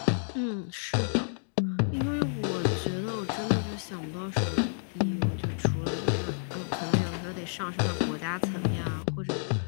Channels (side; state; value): right; silent; digital silence